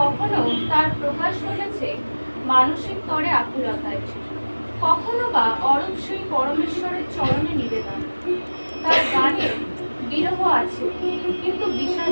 তার প্রকাশ ঘটেছে মানসিক তরে আকুলতায়, কখনো বা অরূপ সেই পরমেশ্বরের চরণে নিবেদন। তার গানে বিরহ আছে কিন্তু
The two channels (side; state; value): both; inverted; correlation -1.00